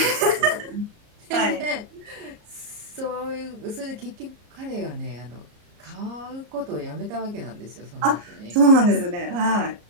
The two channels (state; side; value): late; left; 34 ms